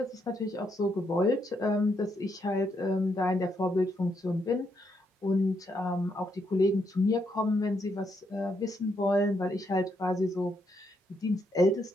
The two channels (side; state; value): both; normal; correlation 0.77